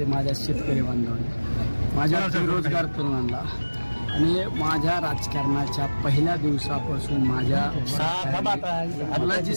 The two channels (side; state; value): both; inverted; correlation -1.00